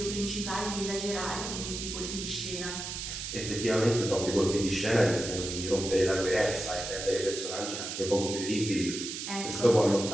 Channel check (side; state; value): right; noise; hiss, 6 dB below the sound